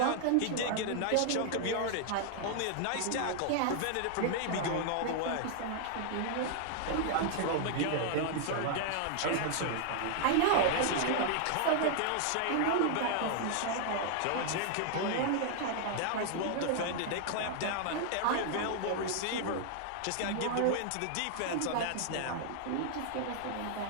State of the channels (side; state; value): both; different; correlation 0.00